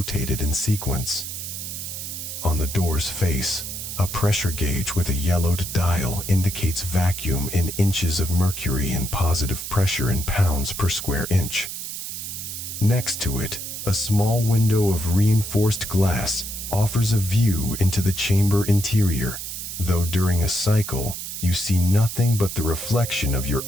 in sequence. On the door's face, a pressure gauge with a yellowed dial indicates vacuum in inches of mercury and positive pressure in pounds per square inch. Next to it, a small window of reinforced glass offers a view into the chamber interior, though during a cycle, you see nothing but the reflection of your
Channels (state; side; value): noise; right; hiss, 7 dB below the sound